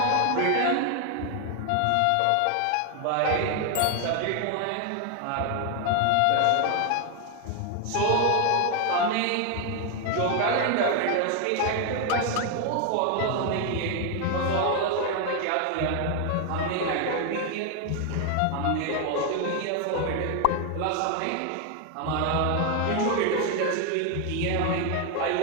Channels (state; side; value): different; both; correlation 0.01